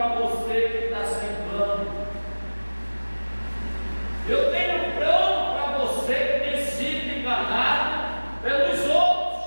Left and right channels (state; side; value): inverted; both; correlation -1.00